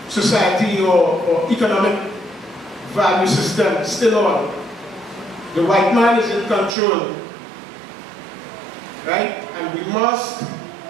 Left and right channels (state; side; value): drops out; left; at 6.8 s